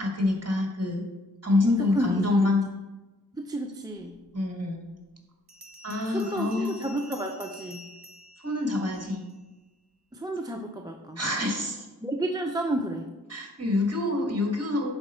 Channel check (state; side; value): normal; both; correlation 0.64